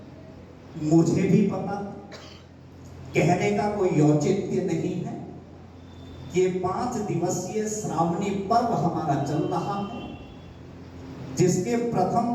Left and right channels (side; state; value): both; identical; correlation 1.00